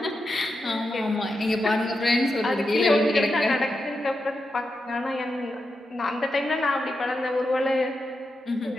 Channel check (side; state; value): both; normal; correlation 0.87